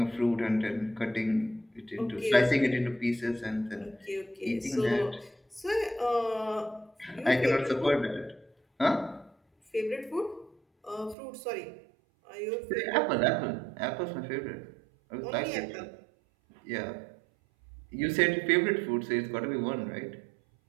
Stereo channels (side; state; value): left; drops out; at 11.2 s